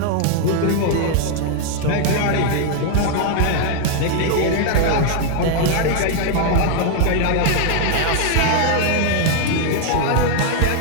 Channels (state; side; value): different; both; correlation 0.00